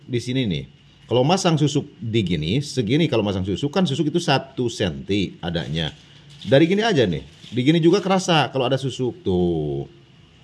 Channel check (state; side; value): identical; both; correlation 1.00